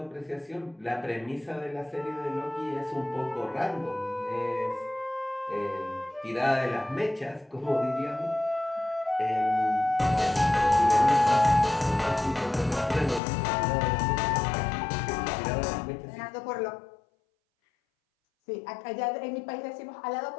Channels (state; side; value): drops out; right; at 13.2 s